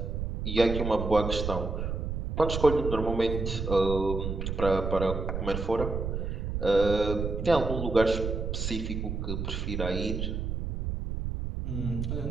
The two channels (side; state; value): right; noise; rumble, 3 dB below the sound